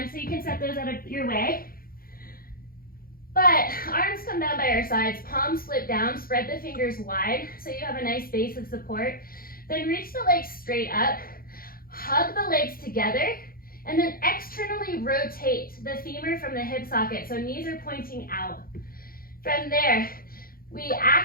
so you can set those out of your way. But arms come down by our sides, palms flip down, spread the fingers wide so you have a nice base of support. Then reach the legs straight up, hug the legs together, and then externally rotate the femur from the hip socket so knees are pointing out. From there, we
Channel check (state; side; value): late; right; 0.42 ms